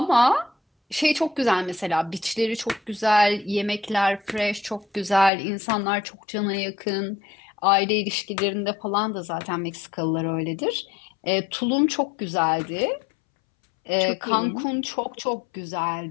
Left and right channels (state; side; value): drops out; right; at 5.3 s